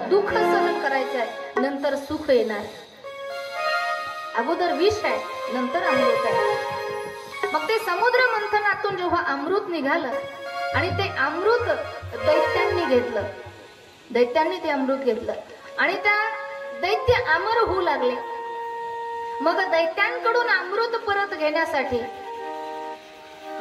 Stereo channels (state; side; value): identical; both; correlation 1.00